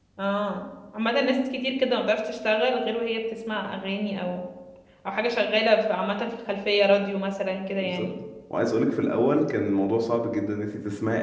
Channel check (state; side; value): identical; both; correlation 1.00